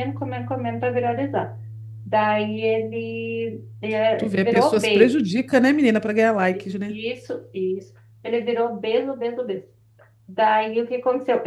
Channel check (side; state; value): both; identical; correlation 1.00